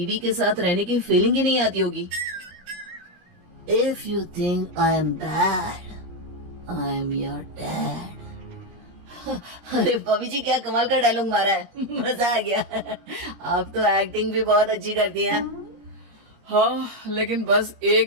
के साथ रहने की फीलिंग ही नहीं आती होगी। If you think I am bad, I am your dad. अरे भाभी जी, क्या कमाल का डायलॉग मारा है, मजा आ गया। आप तो एक्टिंग भी बहुत अच्छी करती हैं। हाँ, लेकिन बस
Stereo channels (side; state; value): left; late; 17 ms